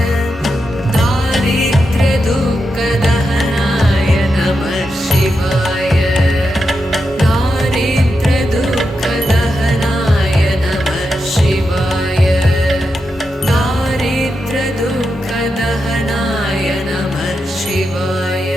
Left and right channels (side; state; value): both; normal; correlation 0.87